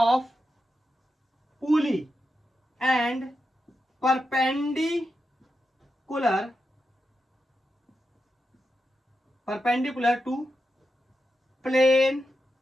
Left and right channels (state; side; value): normal; both; correlation 0.88